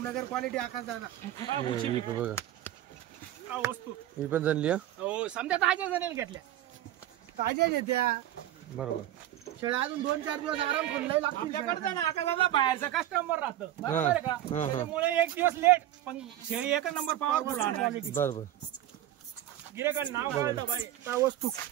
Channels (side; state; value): left; quieter; 12.9 dB